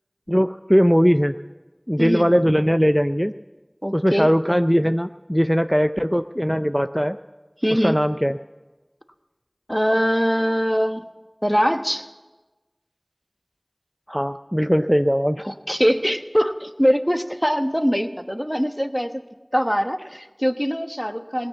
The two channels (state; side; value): identical; both; correlation 1.00